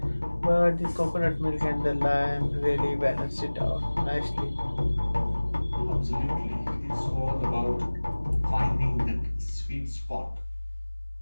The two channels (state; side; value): inverted; both; correlation -1.00